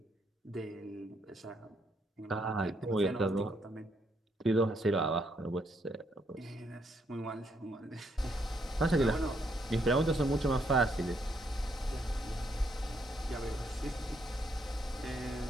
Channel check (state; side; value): normal; both; correlation 0.74